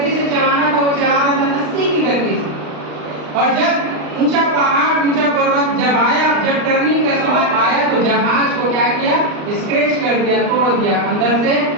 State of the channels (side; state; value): left; late; 39 ms